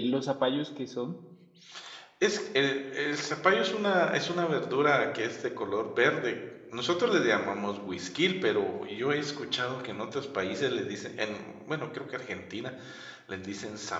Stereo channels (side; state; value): both; identical; correlation 1.00